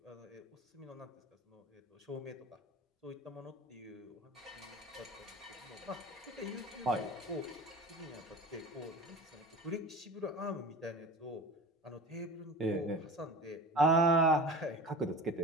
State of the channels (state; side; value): normal; both; correlation 0.35